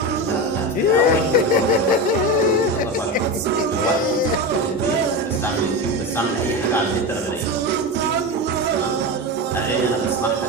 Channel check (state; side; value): normal; both; correlation 0.20